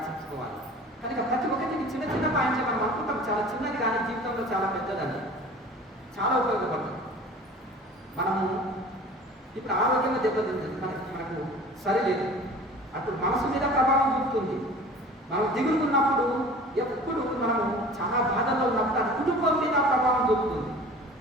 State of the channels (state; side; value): normal; both; correlation 0.43